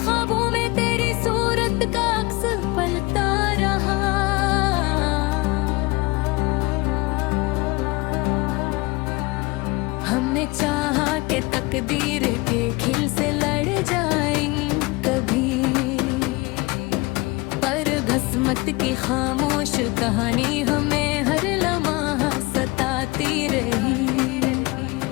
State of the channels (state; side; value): quieter; right; 24.0 dB